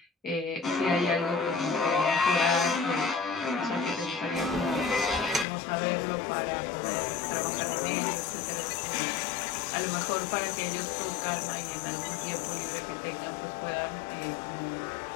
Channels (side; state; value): right; drops out; at 5.5 s